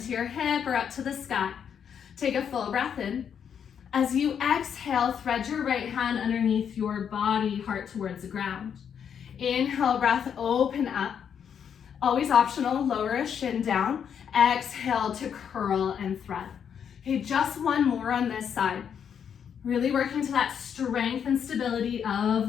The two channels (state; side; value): quieter; right; 7.9 dB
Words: your hip or up to the sky. Take a full breath in. As you exhale, thread your right hand underneath your body, heart towards the ground. Inhale, breath, open up. Always optional, lower a shin down. Exhale to curl and thread. Okay, just one more on this side. Really working to that strength and stability of